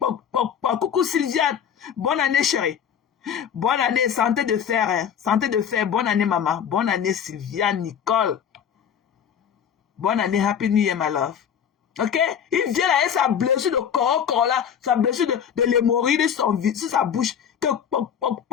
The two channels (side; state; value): right; quieter; 8.3 dB